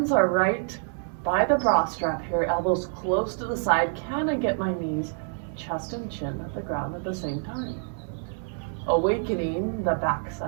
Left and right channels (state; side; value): silent; left; 60 dB below the other